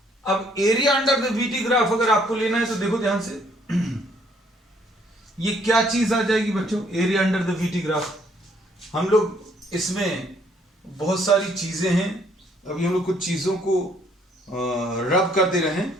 अब area under the VT graph अगर आपको लेना है तो देखो ध्यान से, ये क्या चीज आ जाएगी बच्चों, area under the VT graph. हम लोग इसमें बहुत सारी चीजें हैं, अभी हम लोग कुछ चीजों को रब कर दे रहे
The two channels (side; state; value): both; normal; correlation 0.65